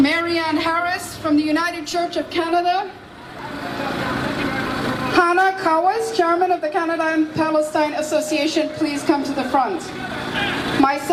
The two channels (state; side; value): identical; both; correlation 1.00